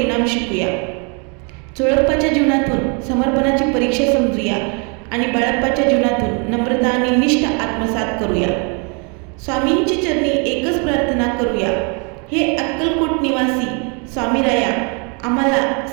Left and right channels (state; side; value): quieter; left; 35.6 dB